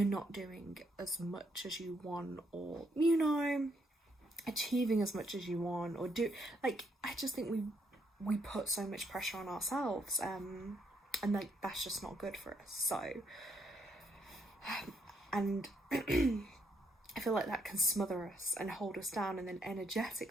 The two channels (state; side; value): normal; both; correlation 0.74